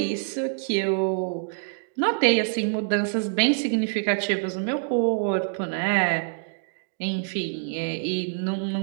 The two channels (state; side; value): silent; left; digital silence